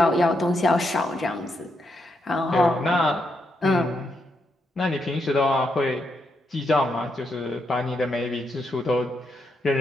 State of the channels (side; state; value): both; normal; correlation 0.81